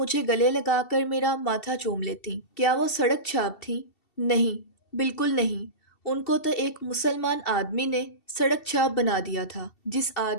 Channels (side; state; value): right; late; 2.7 ms